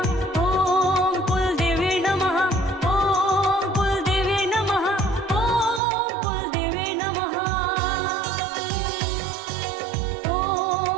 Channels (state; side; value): drops out; left; at 5.8 s